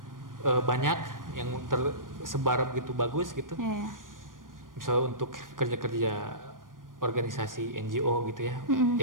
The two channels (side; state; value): left; late; 0.90 ms